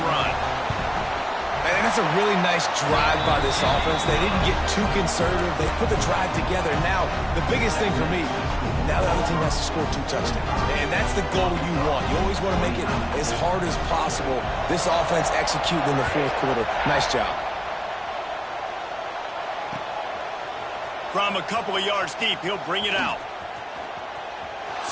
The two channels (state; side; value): identical; both; correlation 1.00